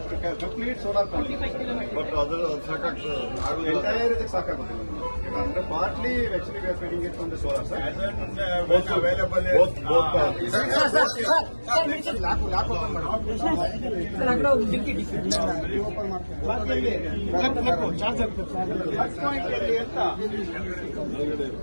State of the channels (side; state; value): both; inverted; correlation -1.00